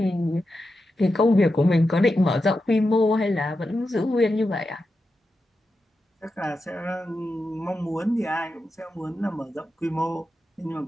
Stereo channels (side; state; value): both; normal; correlation 0.89